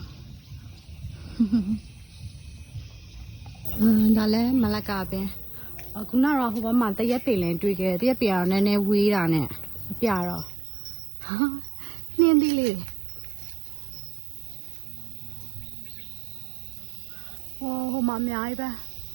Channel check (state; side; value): drops out; left; at 10.5 s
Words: ဒါလည်းမလကာပင်ခုနကတော့ဟိုဘက်မှာတရက်ပင်လည်းတွေ့ခဲ့တရက်ပင်ကတော့နည်းနည်းဝေးတာနဲ့မပြတော့နှင်းသီးလေးဟိုမှာအများကြီးပဲ